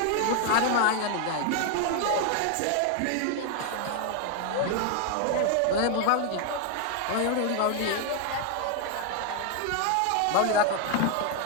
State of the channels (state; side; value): different; both; correlation 0.00